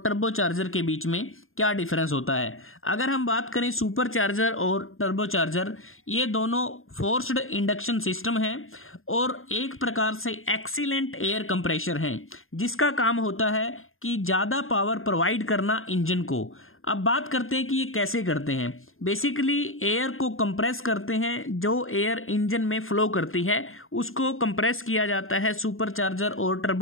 टर्बो चार्जर के बीच में क्या डिफरेंस होता है। अगर हम बात करें सुपर चार्जर और टर्बो चार्जर, ये दोनों फोर्स्ड इंडक्शन सिस्टम हैं और एक प्रकार से एक्सीलेंट एयर कंप्रेशर हैं, जिसका काम होता है कि ज़्यादा पावर प्रोवाइड करना इंजन को। अब बात करते हैं कि ये कैसे करते हैं। बेसिकली एयर को कंप्रेस करते हैं, जो एयर इंजन में फ्लो करती है उसको कंप्रेस किया जाता है सुपर चार्जर और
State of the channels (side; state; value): right; late; 0.60 ms